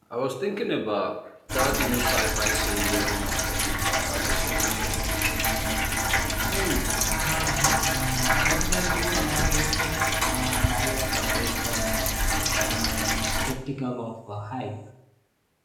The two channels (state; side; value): identical; both; correlation 1.00